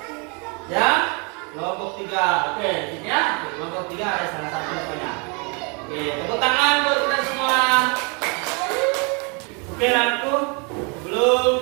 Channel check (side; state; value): left; quieter; 33.4 dB